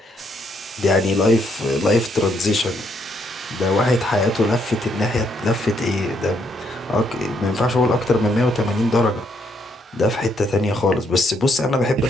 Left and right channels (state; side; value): normal; both; correlation 0.73